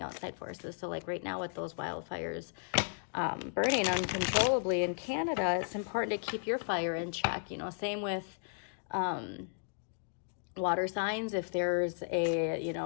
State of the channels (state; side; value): silent; right; digital silence